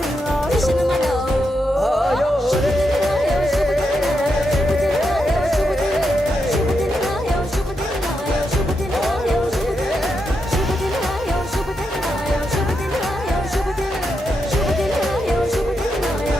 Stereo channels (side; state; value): both; normal; correlation 0.84